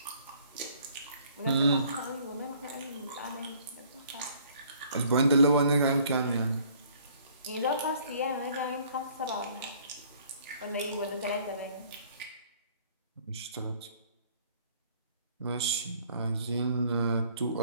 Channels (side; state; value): both; inverted; correlation -0.58